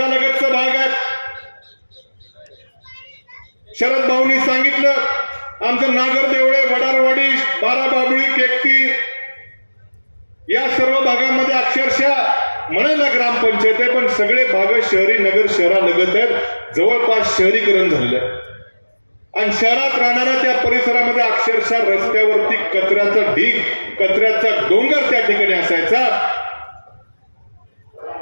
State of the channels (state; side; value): inverted; both; correlation -1.00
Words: भाग आहे. शरद भाऊंनी सांगितलं आमचं नागर देवळे, वडारवाडी, बाराबाबळी, केकती या सर्व भागामध्ये अक्षरशः म्हणायला ग्रामपंचायत आहे, पण सगळे भाग शहरी नगर शहरालगत आहेत. जवळपास शहरीकरण झालेलं आहे आणि शहरात राहणाऱ्या त्या परिसरामध्ये अक्षरशः रस्त्यावरती कचऱ्याचा ढीग, कचऱ्याचा डोंगर त्या ठिकाणी असायचा.